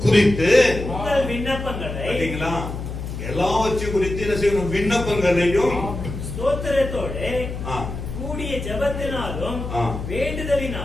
குறித்து உங்கள் விண்ணப்பங்களை பாத்தீங்களா, எல்லாவற்றையும் குறித்து என்ன செய்யணும்? விண்ணப்பங்களையும் ஸ்தோத்திரத்தோடு ஆ, கூடிய ஜெபத்தினாலும் ஆ.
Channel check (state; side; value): noise; left; hum, 7 dB below the sound